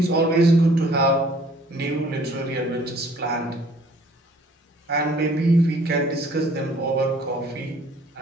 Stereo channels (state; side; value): normal; both; correlation 0.57